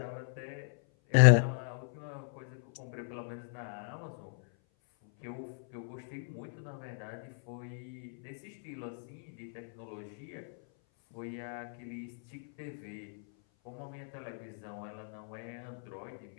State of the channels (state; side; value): silent; right; 54 dB below the other